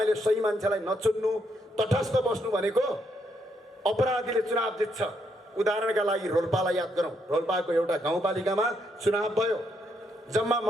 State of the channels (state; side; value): normal; both; correlation 0.76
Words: सही मान्छेलाई नचुन्नु तटस्थ बस्नु भनेको अपराधीले चुनाव जित्छ उदाहरणका लागि रोल्पालाई याद गरौँ रोल्पाको एउटा गाउँपालिकामा चुनाव भयो जम्मा